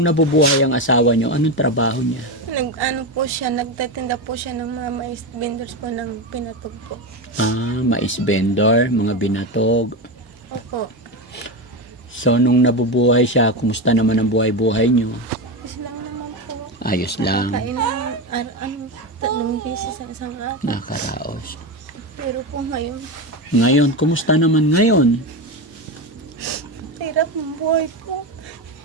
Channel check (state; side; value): normal; both; correlation 0.16